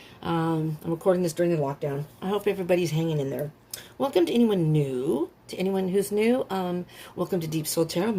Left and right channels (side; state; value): both; identical; correlation 1.00